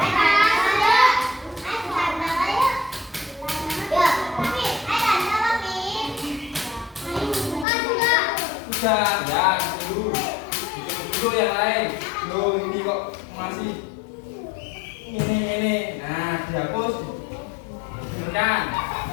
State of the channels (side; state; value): right; drops out; at 7.7 s